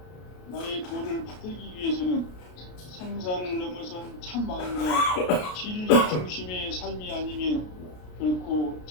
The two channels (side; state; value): right; late; 33 ms